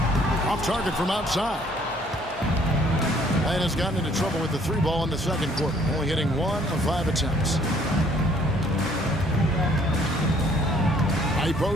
Off target from outside. And has gotten into trouble with the 3 ball in the second quarter. Only hitting 1 of 5 attempts. High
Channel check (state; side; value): normal; both; correlation 0.61